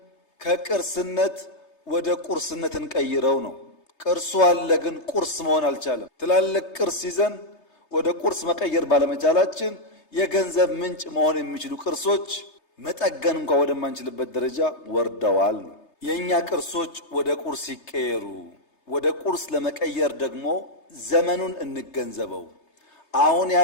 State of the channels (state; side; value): late; right; 3.3 ms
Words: ከቅርስነት ወደ ቁርስነት እንቀይረው ነው። ቅርሱ አለ ግን ቁርስ መሆን አልቻለም። ትላልቅ ቅርስ ይዘን ወደ ቁርስ መቀየር ባለመቻላችን የገንዘብ ምንጭ መሆን የሚችሉ ቅርሶች መጠገን እንኳን ወደማንችልበት ደረጃ ወርደዋል። የኛ ቅርሶች ወደ ቁርስ ይቀየሩ። ወደ ቁርስ ለመቀየር ደግሞ ዘመኑን እንገንዘበው። አሁን